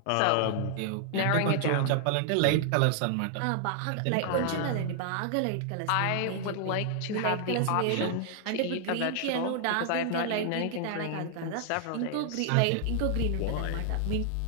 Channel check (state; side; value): different; both; correlation 0.00